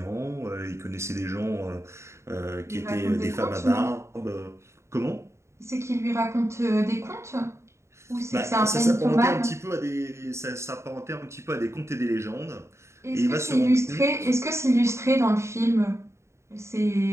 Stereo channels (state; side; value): late; left; 0.13 ms